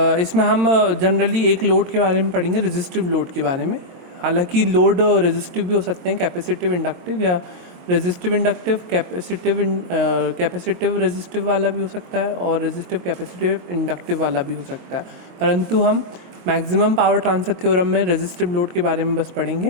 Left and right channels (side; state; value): left; late; 23 ms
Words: इसमें हम जनरली एक लोड के बारे में पढ़ेंगे, रेजिस्टिव लोड के बारे में। हालांकि लोड रेजिस्टिव भी हो सकते हैं, कैपेसिटिव इंडक्टिव, या रेजिस्टिव इंडक्टिव कैपेसिटिव रेजिस्टिव वाला भी हो सकता है, और रेजिस्टिव कैपेसिटिव इंडक्टिव वाला भी हो सकता है। परंतु हम मैक्सिमम पावर ट्रांसफ़र थ्योरम में रेजिस्टिव लोड के बारे में बस